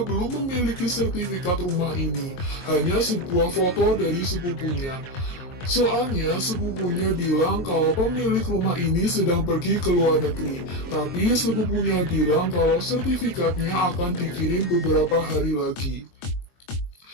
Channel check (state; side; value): late; right; 22 ms